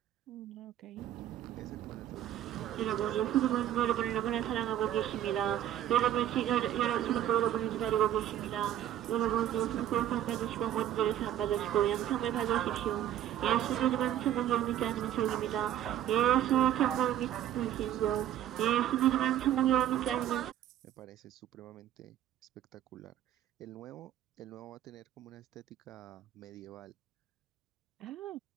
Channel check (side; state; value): left; quieter; 11.6 dB